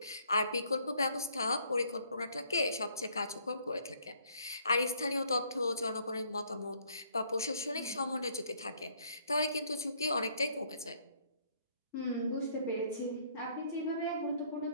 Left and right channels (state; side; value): inverted; both; correlation -0.64